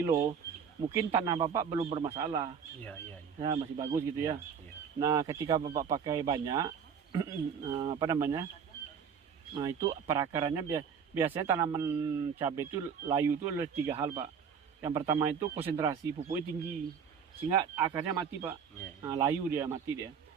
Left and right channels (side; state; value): left; quieter; 7.0 dB